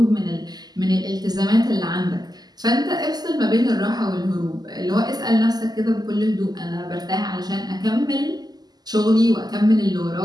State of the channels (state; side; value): late; left; 0.20 ms